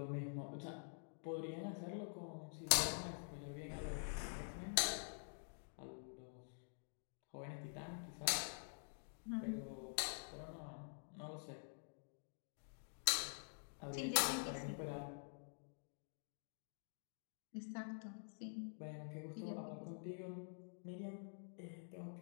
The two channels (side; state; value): right; silent; digital silence